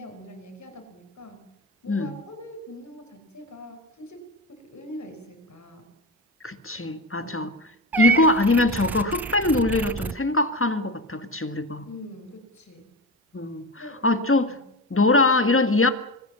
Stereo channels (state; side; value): normal; both; correlation 0.23